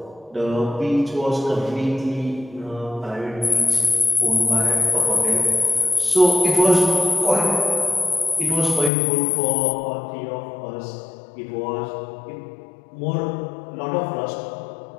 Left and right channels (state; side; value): drops out; right; at 8.9 s